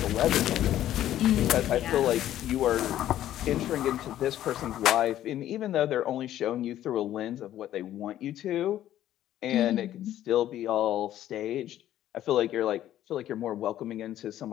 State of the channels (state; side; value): quieter; right; 12.4 dB